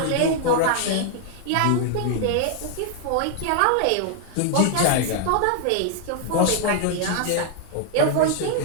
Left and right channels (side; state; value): both; different; correlation 0.00